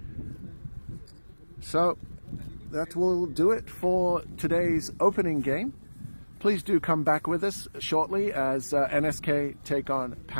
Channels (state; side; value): inverted; both; correlation -1.00